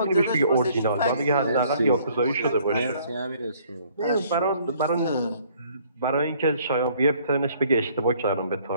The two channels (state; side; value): inverted; both; correlation -0.61